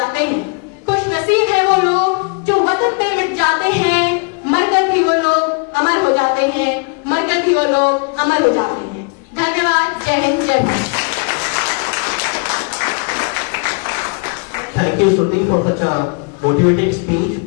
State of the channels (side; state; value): right; quieter; 35.6 dB